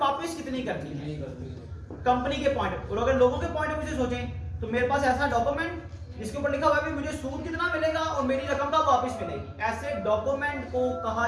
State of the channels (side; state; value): both; identical; correlation 1.00